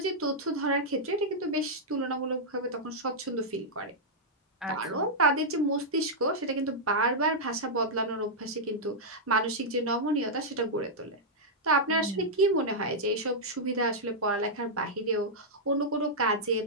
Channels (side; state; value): both; normal; correlation -0.07